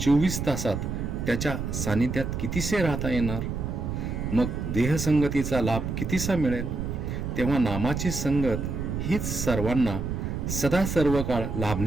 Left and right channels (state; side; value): noise; right; rumble, 3 dB below the sound